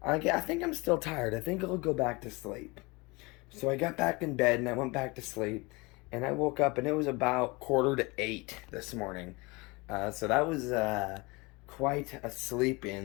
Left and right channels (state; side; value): quieter; right; 25.6 dB